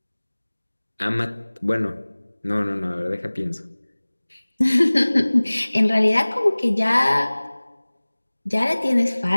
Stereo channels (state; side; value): inverted; both; correlation -1.00